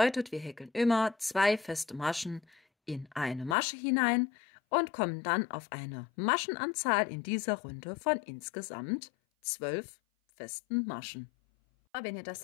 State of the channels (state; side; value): drops out; right; at 3.6 s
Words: wir häkeln immer 2 feste Maschen in eine Masche hinein und kommen dann auf eine Maschenanzahl in dieser Runde von insgesamt 12 festen Maschen. Wenn ihr das